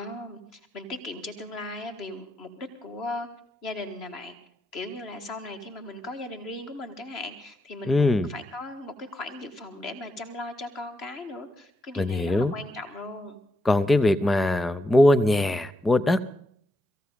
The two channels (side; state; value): both; normal; correlation 0.85